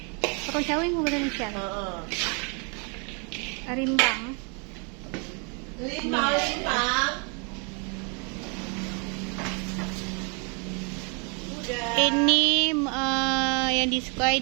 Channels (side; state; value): left; quieter; 35.5 dB